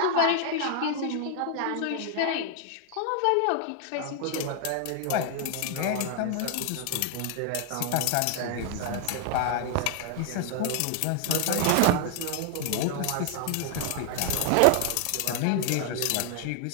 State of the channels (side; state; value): both; different; correlation 0.00